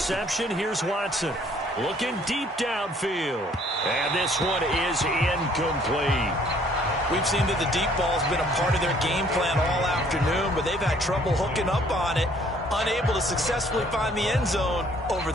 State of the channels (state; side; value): normal; both; correlation 0.60